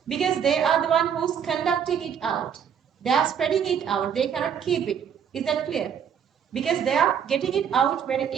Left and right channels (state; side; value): quieter; left; 8.0 dB